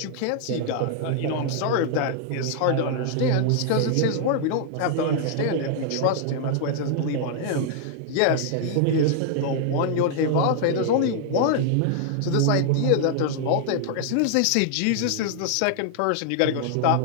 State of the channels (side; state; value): both; different; correlation 0.00